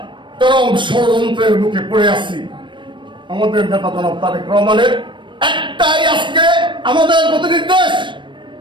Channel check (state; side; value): late; left; 0.23 ms